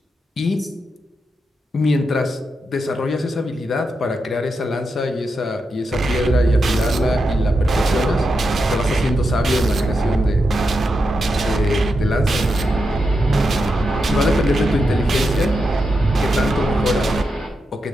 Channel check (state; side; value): normal; both; correlation 0.86